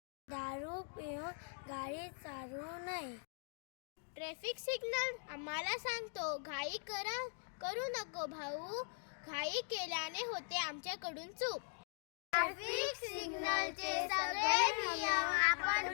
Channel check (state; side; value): silent; right; 50 dB below the other